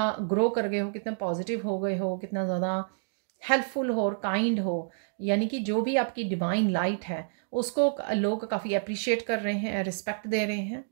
ग्रो कर गए हो, कितना पॉजिटिव हो गए हो, कितना ज़्यादा हेल्पफुल हो और काइंड हो, यानी कि जो भी आपकी डिवाइन लाइट है उसको लोग काफ़ी अप्रिशिएट कर रहे हैं, रिस्पेक्ट दे रहे हैं।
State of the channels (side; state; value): left; silent; digital silence